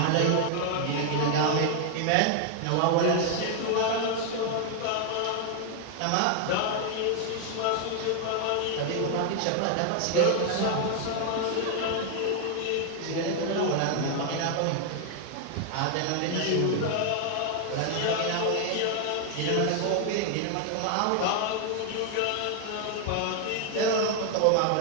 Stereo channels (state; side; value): different; both; correlation 0.00